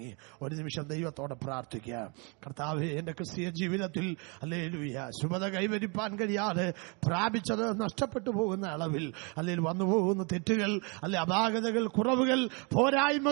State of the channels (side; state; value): left; quieter; 32.5 dB